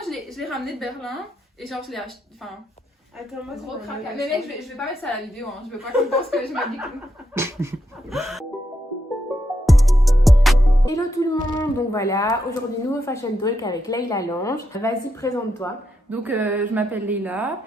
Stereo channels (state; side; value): normal; both; correlation 0.82